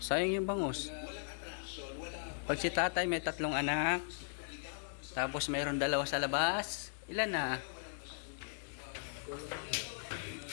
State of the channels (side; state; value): right; silent; digital silence